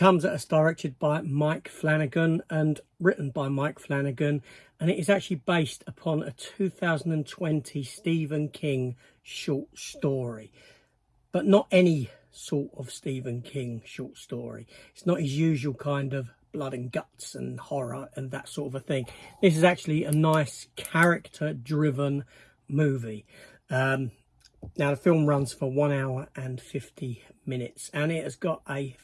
at us directed by Mike Flanagan and written by Mike Flanagan, and it is actually based upon a 2020 Stephen King short story, but not any sort of Stephen King short story. It's not his usual kind of blood and guts and horror and that sort of a thing. This is actually a nice character-driven movie. Now, the film runs for 1 hour and 50 minutes, and it has got a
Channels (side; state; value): both; identical; correlation 1.00